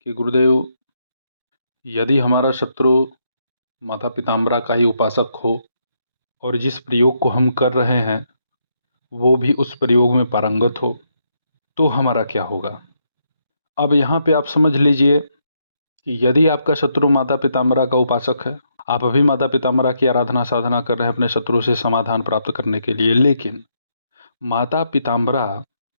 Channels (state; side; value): inverted; both; correlation -0.77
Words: कि गुरुदेव, यदि हमारा शत्रु माता पिताम्बरा का ही उपासक हो और जिस प्रयोग को हम कर रहे हैं वो भी उस प्रयोग में पारंगत हो तो हमारा क्या होगा। अब यहाँ पे आप समझ लीजिए कि यदि आपका शत्रु माता पिताम्बरा का उपासक है, आप अभी माता पिताम्बरा की आराधना साधना कर रहे हैं अपने शत्रु से समाधान प्राप्त करने के लिए, लेकिन माता पिताम्बरा